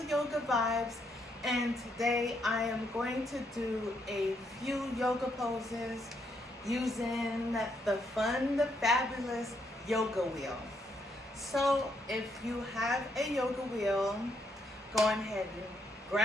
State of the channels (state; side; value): normal; both; correlation 0.75